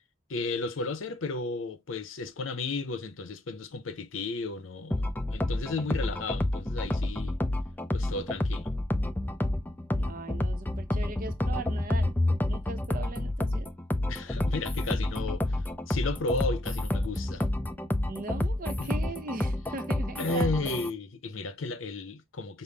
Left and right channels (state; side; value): normal; both; correlation 0.76